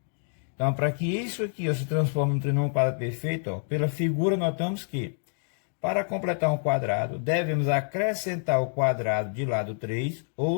Então, para que isso aqui, ó, se transforme em um trinômio quadrado perfeito, ó, pela figura notamos que, para completar um quadrado, devemos acrescentar o quadrado de lado 3,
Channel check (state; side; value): silent; right; digital silence